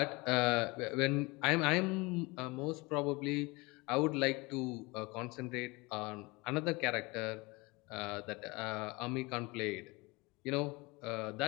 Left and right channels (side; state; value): right; quieter; 24.9 dB